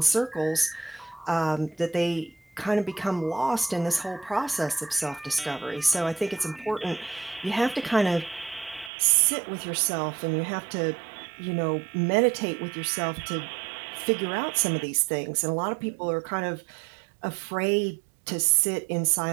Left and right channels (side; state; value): left; drops out; at 8.9 s